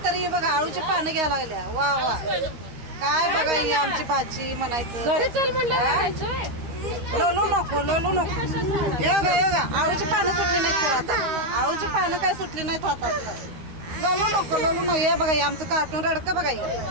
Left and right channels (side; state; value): left; late; 13 ms